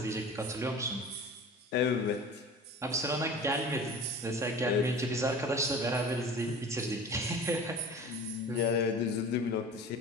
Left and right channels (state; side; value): normal; both; correlation 0.39